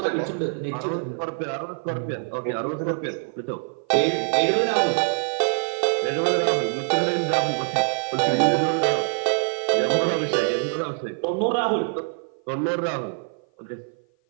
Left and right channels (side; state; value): left; silent; 55 dB below the other